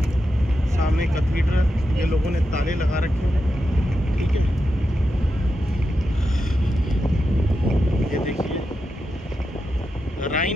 सामने कैथीड्रल, ये लोगों ने ताले लगा रखे हैं। ठीक है, ये देखिए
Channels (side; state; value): both; normal; correlation 0.88